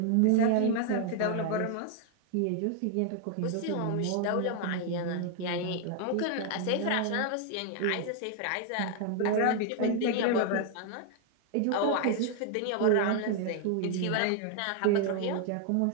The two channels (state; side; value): different; both; correlation 0.00